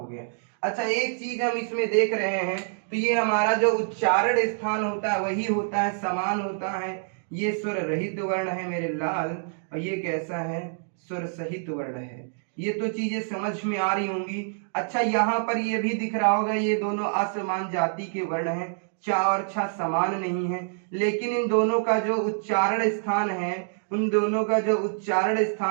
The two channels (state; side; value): silent; left; digital silence